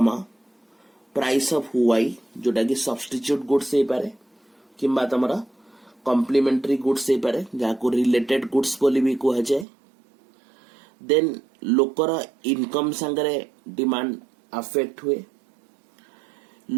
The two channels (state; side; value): drops out; left; at 9.7 s